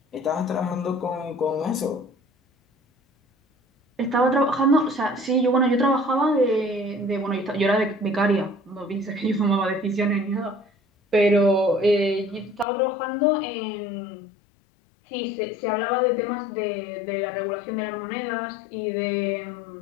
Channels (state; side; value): drops out; right; at 12.7 s